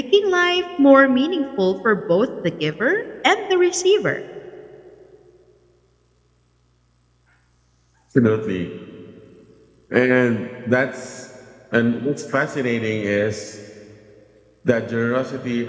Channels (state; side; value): identical; both; correlation 1.00